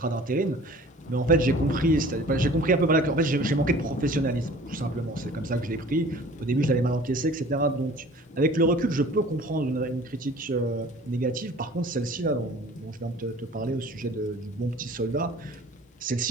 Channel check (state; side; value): normal; both; correlation 0.47